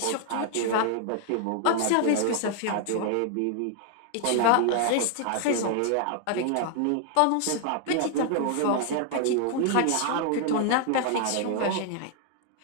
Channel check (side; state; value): both; different; correlation 0.00